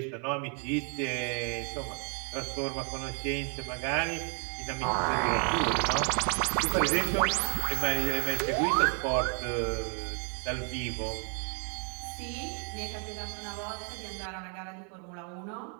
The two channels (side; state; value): left; quieter; 39.5 dB